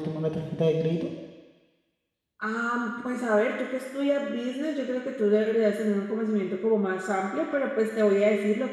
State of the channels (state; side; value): identical; both; correlation 1.00